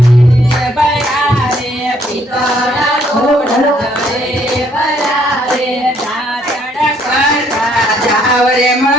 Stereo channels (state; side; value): normal; both; correlation 0.67